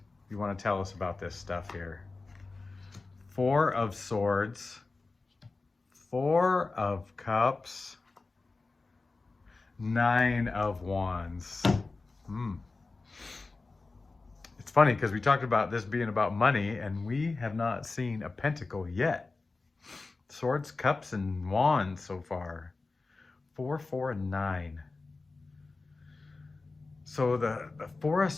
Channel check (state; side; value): quieter; right; 3.7 dB